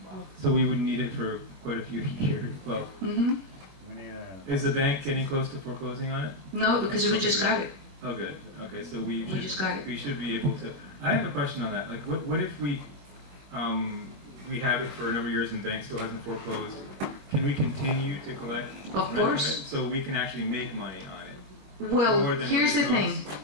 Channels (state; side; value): late; left; 21 ms